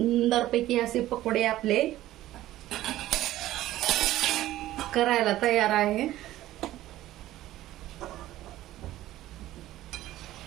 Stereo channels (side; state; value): left; quieter; 14.8 dB